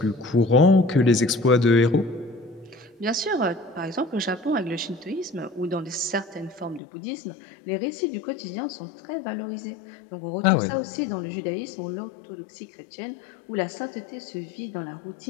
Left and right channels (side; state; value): right; drops out; at 6.8 s